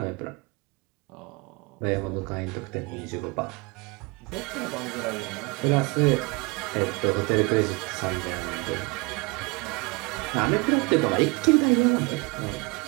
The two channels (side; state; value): left; quieter; 27.0 dB